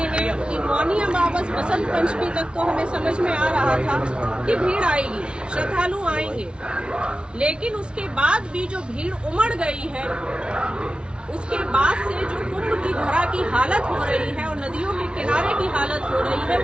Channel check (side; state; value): left; late; 0.057 ms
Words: कि मौनी अमावस बसंत पंचमी तक तो हमें समझ में आ रहा था कि भीड़ आएगी, श्रद्धालु आएंगे, लेकिन उसके बाद भी जो भीड़ उमड़ गई है, उसके बाद से जो कुंभ की धरा की हालत हो रही है और नदियों के किनारे की हालत हो रही है